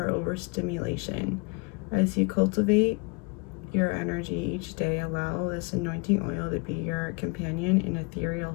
overstimulation. As you cultivate your energy each day, allow this anointing oil to be your companion and ethereal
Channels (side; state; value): right; quieter; 30.2 dB